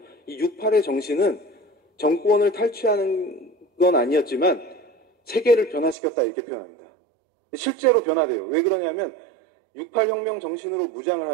이 68의 정신은 정권을 탈취하는 건 아니었지만 세계를 변화시켰다 이렇게 표현합니다. 실제로 변화돼요. 왜 그러냐면 68혁명 정신으로 무장을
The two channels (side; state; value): left; drops out; at 6.0 s